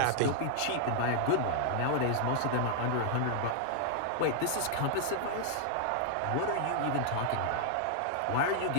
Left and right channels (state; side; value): different; both; correlation -0.01